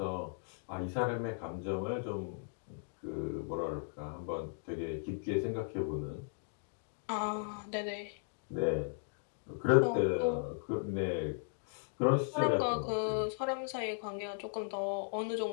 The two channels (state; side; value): silent; right; digital silence